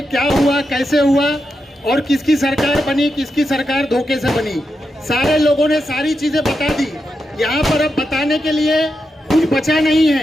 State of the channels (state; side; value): normal; both; correlation 0.87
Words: क्या हुआ, कैसे हुआ और किसकी सरकार बनी, किसकी सरकार धोखे से बनी। सारे लोगों ने सारी चीज़ें बता दी। यहाँ पर अब बताने के लिए कुछ बचा नहीं